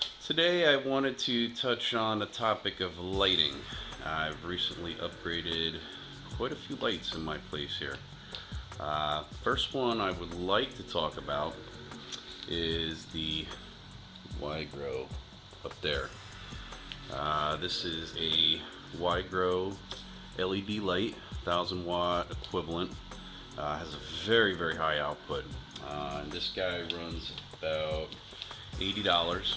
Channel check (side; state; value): both; identical; correlation 1.00